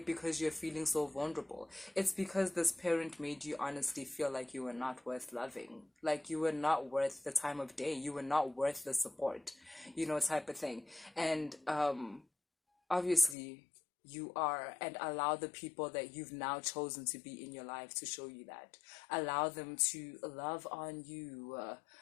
you're feeling so vulnerable. It's because this parent made you honestly feel like you were not worth loving, like you were not worth the time of day, you were not worth the support, type of thing. And obviously you are, and allow the people that you've now chosen to be in your life to show you that. Allow them to love on you,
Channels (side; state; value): right; drops out; at 13.4 s